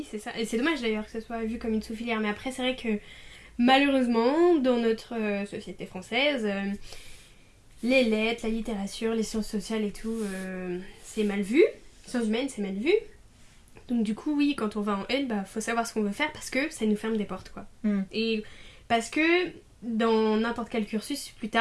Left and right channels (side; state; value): both; identical; correlation 1.00